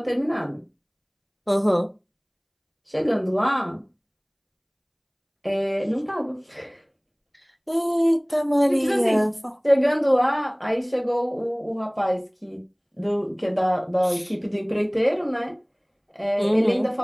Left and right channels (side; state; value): both; identical; correlation 1.00